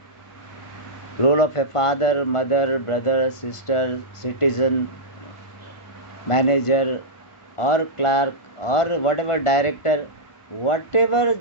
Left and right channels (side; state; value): right; late; 1.5 ms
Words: Role of a father, mother, brother, sister, citizen, manager or clerk or whatever director. Whatever